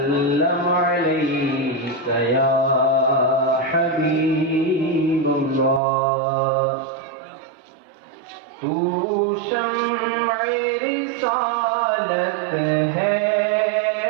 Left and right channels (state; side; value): drops out; left; at 5.8 s